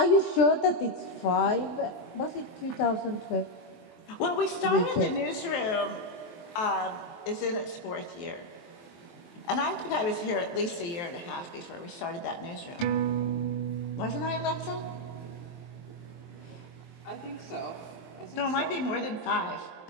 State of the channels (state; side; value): late; right; 23 ms